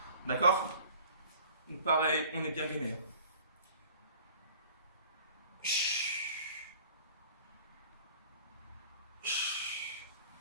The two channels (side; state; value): both; inverted; correlation -0.47